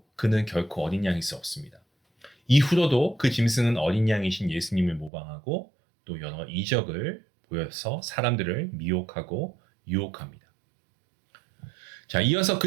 그는 결코 어린 양일 수 없습니다. 이후로도 그 짐승은 어린 양이신 예수님을 모방하고 또 여러 이적을 보여서 사람들을 미혹하고 유혹합니다. 자, 이어서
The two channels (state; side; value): drops out; left; at 5.1 s